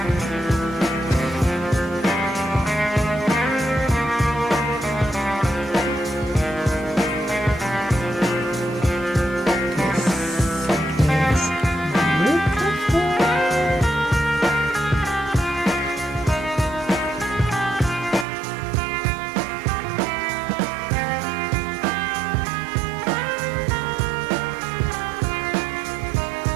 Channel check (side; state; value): left; drops out; at 18.2 s